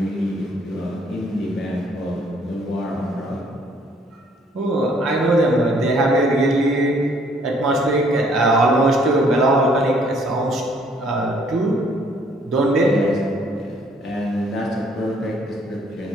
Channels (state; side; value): normal; both; correlation 0.63